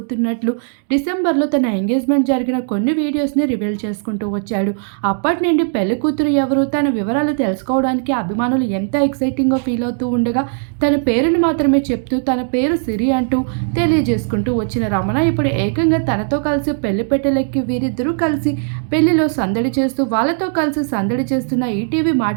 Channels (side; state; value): left; silent; 68 dB below the other